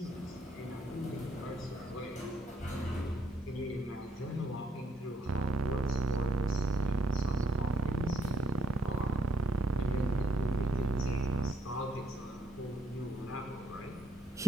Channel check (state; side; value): normal; both; correlation 0.74